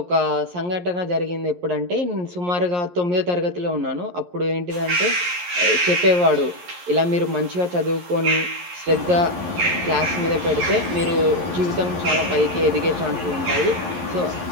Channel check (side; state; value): left; late; 11 ms